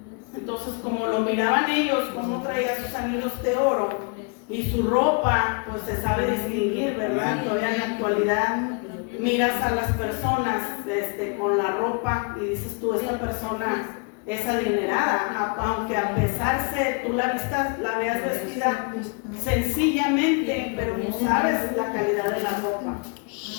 Entonces, como lo miraban ellos, cómo traía sus anillos de oro y su ropa, pues se sabe distinguir, ¿verdad? Todavía en la actualidad miras a las personas con la ropa y dices tú: esta persona es adinerada, aunque a pesar de tú la veas vestida sencillamente, pero no sabes la calidad de la ropa.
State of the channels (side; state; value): right; quieter; 35.3 dB